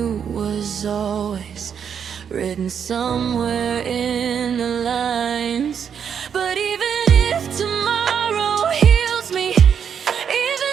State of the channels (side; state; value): left; quieter; 7.6 dB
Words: was always written somewhere in the lines. But even if tomorrow heals me,